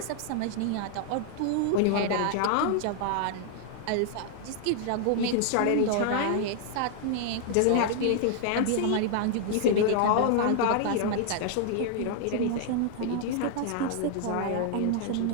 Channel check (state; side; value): different; both; correlation 0.00